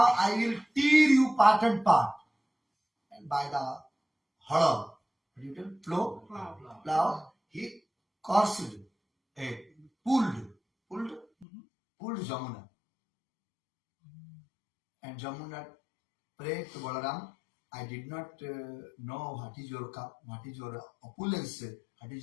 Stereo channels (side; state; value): right; drops out; at 11.5 s